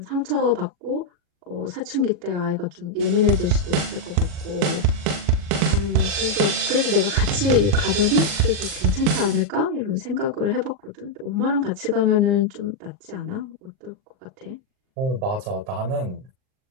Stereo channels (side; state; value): left; late; 40 ms